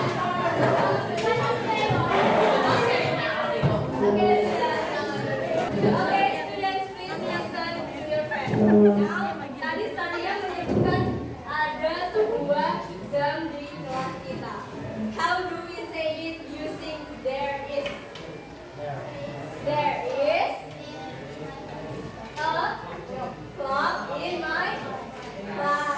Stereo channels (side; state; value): both; identical; correlation 1.00